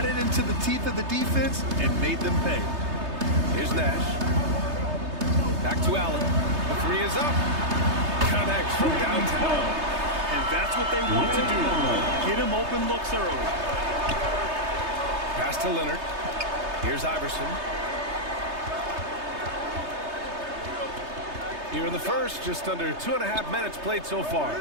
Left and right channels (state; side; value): late; left; 3.3 ms